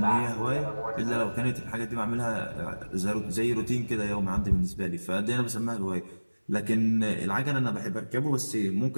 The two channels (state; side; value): inverted; both; correlation -1.00